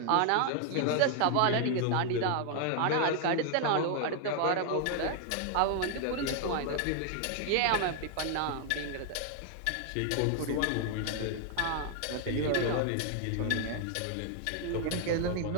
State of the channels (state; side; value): different; both; correlation 0.00